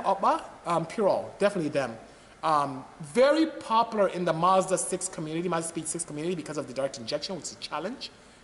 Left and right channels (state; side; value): identical; both; correlation 1.00